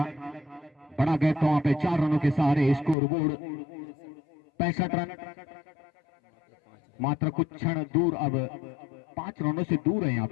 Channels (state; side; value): drops out; right; at 3.0 s